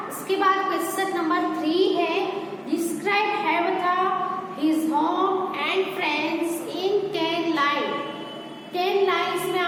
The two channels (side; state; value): both; identical; correlation 1.00